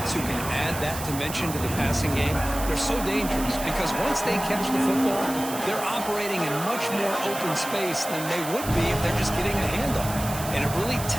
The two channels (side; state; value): right; noise; hiss, 9 dB below the sound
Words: who can add that dimension to the passing game? They're so dangerous because once they catch the football, they're operating in much more open space than they would be if they're just getting a handoff. And it really